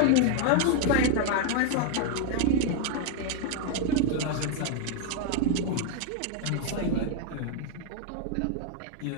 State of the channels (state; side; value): different; both; correlation 0.01